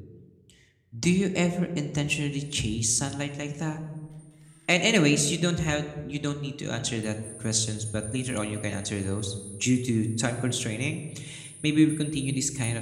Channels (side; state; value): both; identical; correlation 1.00